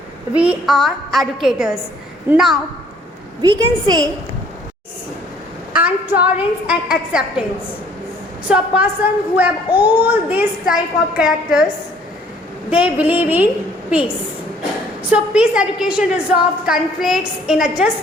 we are educators. Now we can say and tolerance and acceptance. So a person who have all these type of characters, they believe in peace. So peace education resolves conflicts in a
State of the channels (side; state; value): both; normal; correlation 0.59